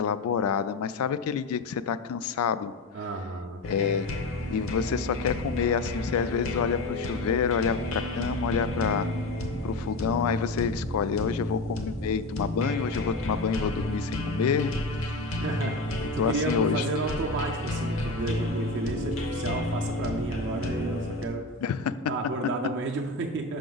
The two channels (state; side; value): quieter; right; 3.2 dB